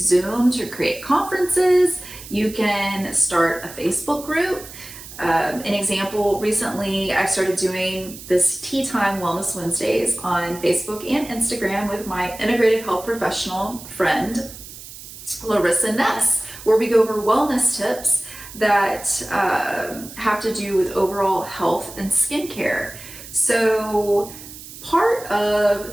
to create conferences. You can start a Facebook group. An example, recently I started doing this Tea Time Wellness Wednesdays on Facebook and Instagram with my integrative health professional friend, Larissa Ness, where we go over wellness tips that have to do with overall health and skincare. So part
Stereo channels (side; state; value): right; noise; hiss, 15 dB below the sound